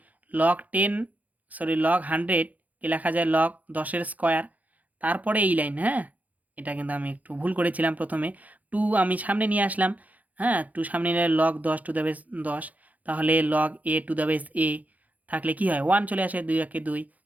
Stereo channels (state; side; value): late; left; 0.077 ms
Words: লগ 100কে লেখা যায় লগ 10-এর স্কোয়ার। তারপরে এই লাইন, হ্যাঁ, এটা কিন্তু আমি একটু ভুল করেছিলাম, প্রথমে 2 আমি সামনে নিয়ে আসলাম, হ্যাঁ, 2 সামনে নিলে লগ 10 টু দ্য বেস 10, তাহলে log a to the base a থাকলে কি হয়? 1 চলে আসে, 2 একে 2,